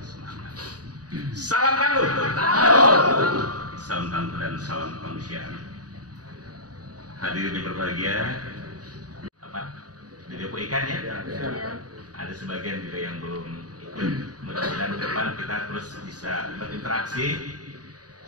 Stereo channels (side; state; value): left; late; 0.68 ms